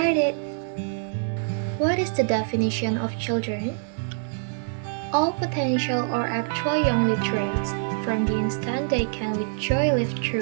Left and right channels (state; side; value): silent; left; 62 dB below the other